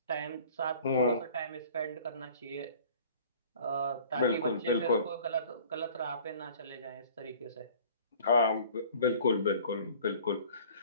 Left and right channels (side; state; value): both; inverted; correlation -0.48